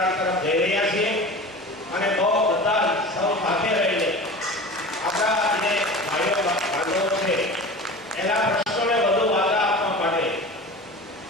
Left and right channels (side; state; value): both; normal; correlation 0.35